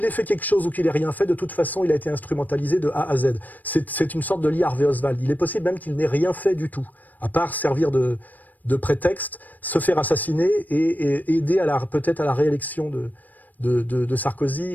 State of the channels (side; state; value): right; late; 0.084 ms